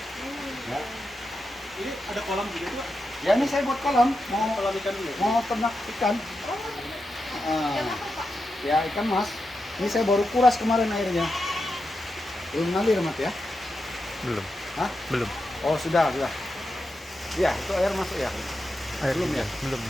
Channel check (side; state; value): both; normal; correlation 0.88